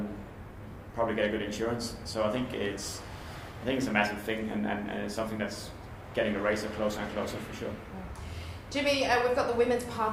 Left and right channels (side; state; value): both; identical; correlation 1.00